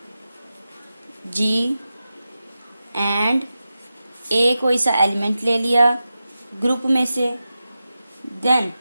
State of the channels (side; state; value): both; inverted; correlation -0.92